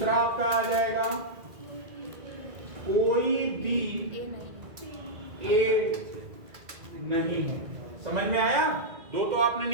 आपका आ जाएगा कोई बी ए नहीं है। समझ में आया? दो तो आपने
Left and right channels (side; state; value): left; late; 2.0 ms